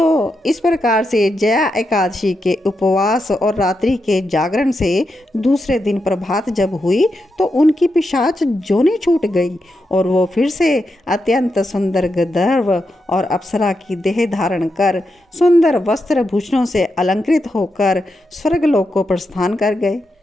इस प्रकार से जया एकादशी के उपवास और रात्रि के जागरण से दूसरे दिन प्रभात जब हुई तो उनकी पिशाच जोनी छूट गई और वो फिर से अत्यंत सुंदर गंधर्व और अप्सरा की देह धारण कर सुंदर वस्त्र भूषणों से अलंकृत होकर स्वर्गलोक को प्रस्थान कर गए।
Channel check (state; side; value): normal; both; correlation 0.86